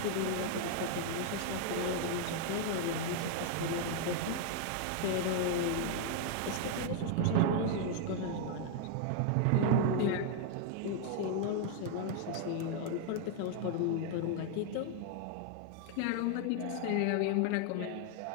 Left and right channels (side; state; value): both; different; correlation 0.00